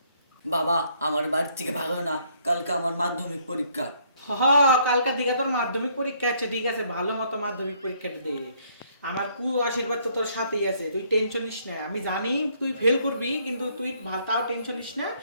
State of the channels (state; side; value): inverted; both; correlation -0.67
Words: বাবা আমার বাড়ির থেকে ভালো না, কালকে আমার মাধ্যমিক পরীক্ষা। কালকার দিকে তোর মাধ্যমিক পরীক্ষা আছে, ঠিক আছে, ভালো মতো মাধ্যমিক পরীক্ষাটা দে। আমার কু আশীর্বাদ তো তোর সাথেই আছে, তুই টেনশন নিস না। আমি জানি তুই ফেল করবি, কিন্তু তুই তাও টেনশন নিস না।